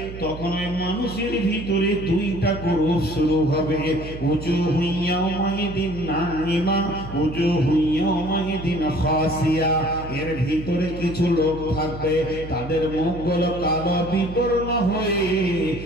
তখন ওই মানুষের ভিতরে দুইটা গ্রুপ শুরু হবে। উজুহু ইয়াওমাইদিন নাইমা, উজুহু ইয়াওমাইদিন খাসিয়া। এর ভিতরে কিছু লোক থাকবে, তাদের মুখগুলো কালো বিবর্ণ হয়ে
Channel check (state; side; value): noise; right; hum, 11 dB below the sound